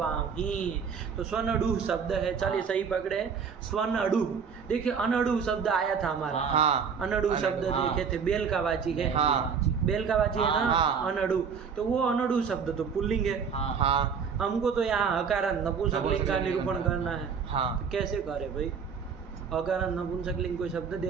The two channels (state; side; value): quieter; left; 6.4 dB